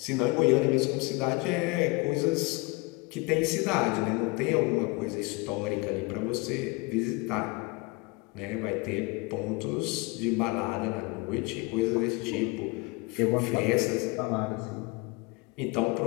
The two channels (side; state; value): right; quieter; 26.4 dB